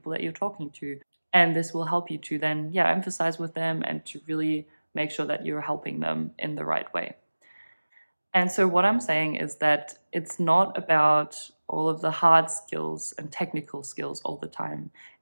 that you're talking to. And this will help you to then, emphasize with them and to really make sure that you're helping them in the right way. And so what I'm saying is that it's not about all of the hard skills and technical skills all the time.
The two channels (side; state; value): both; inverted; correlation -1.00